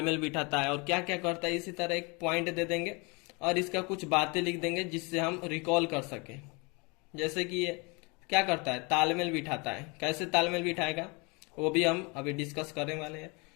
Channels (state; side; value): quieter; right; 29.3 dB